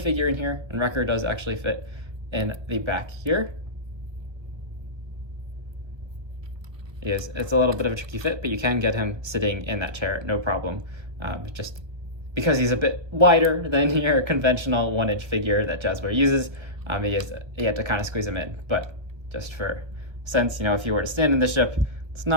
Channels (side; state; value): left; late; 1.1 ms